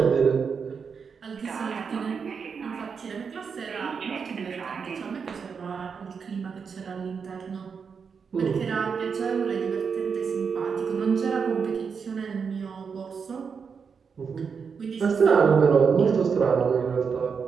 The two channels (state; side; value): quieter; left; 6.0 dB